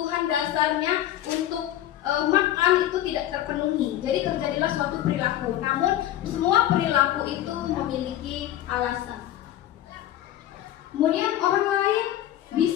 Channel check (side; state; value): right; quieter; 12.8 dB